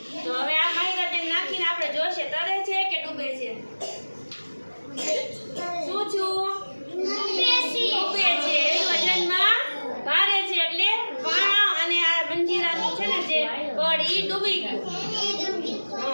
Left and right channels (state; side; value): inverted; both; correlation -1.00